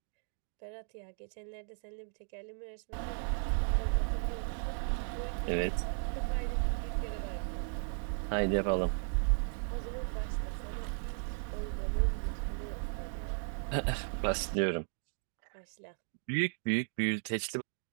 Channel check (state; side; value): silent; left; 54 dB below the other